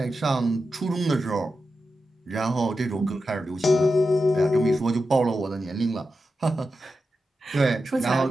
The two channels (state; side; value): normal; both; correlation 0.90